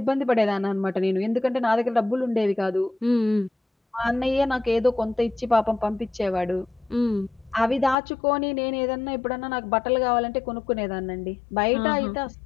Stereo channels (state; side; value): drops out; right; at 8.0 s